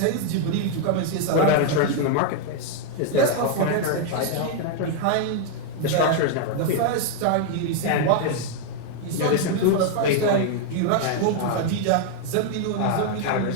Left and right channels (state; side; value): different; both; correlation 0.00